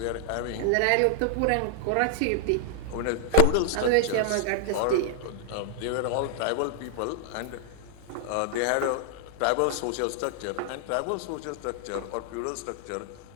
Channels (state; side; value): different; both; correlation -0.01